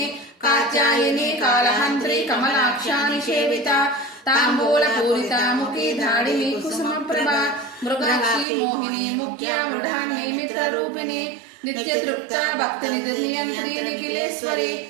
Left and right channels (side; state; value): left; drops out; at 8.5 s